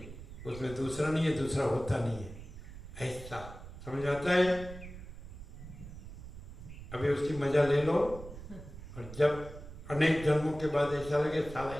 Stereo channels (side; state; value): right; noise; rumble, 13 dB below the sound